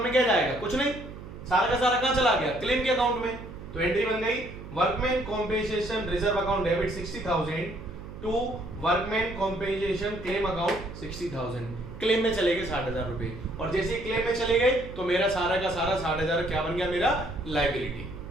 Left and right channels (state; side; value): noise; right; hum, 13 dB below the sound